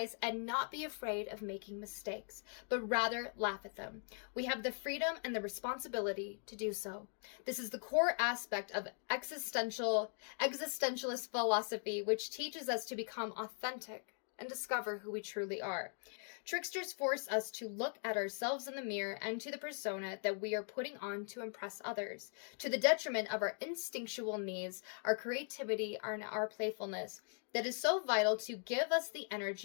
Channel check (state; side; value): silent; right; 51 dB below the other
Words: and not be afraid of making mistakes, but rather laugh at them. We have the freedom and the responsibility to do so. This is the core aspect of existentialist philosophy, which teaches us to become authentic and discover who we truly are. Tricksters force us to look at ourselves in the mirror and to the persona that we are putting on to impress others, to the detriment of our instinctual needs, our creativity, and our playfulness that is so vital to give us the